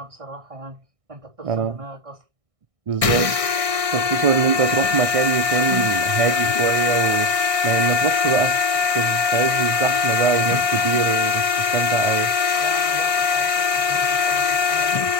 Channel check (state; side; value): late; left; 1.6 ms